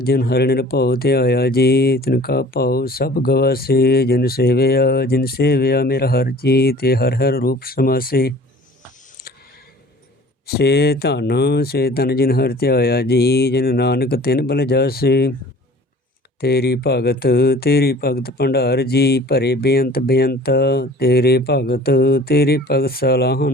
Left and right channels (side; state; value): both; normal; correlation 0.47